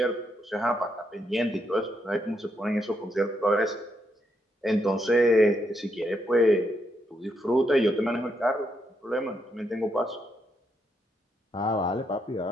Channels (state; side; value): normal; both; correlation 0.79